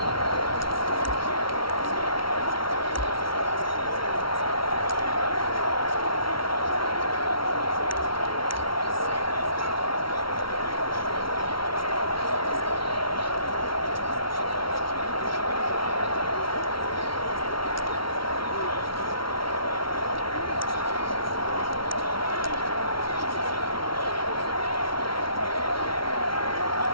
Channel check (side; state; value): right; late; 0.74 ms